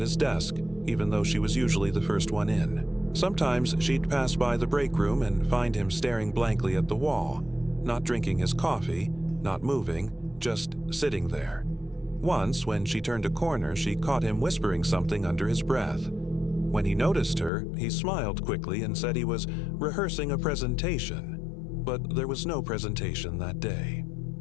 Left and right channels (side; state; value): right; drops out; at 17.5 s